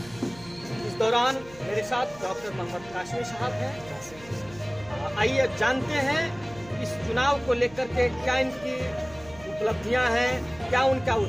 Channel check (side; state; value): right; noise; hum, 21 dB below the sound